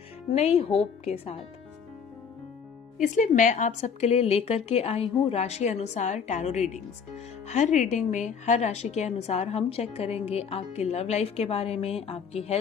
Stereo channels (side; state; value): right; quieter; 6.5 dB